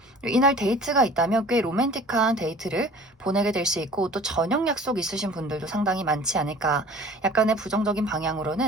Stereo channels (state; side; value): normal; both; correlation 0.46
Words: 이날 데이트가 있다면 꽤 로맨틱한 데이트를 보내게 될 수 있고, 또 저녁 약속 있으신 분들도 상당히 많지 않을까. 약간의 부정적인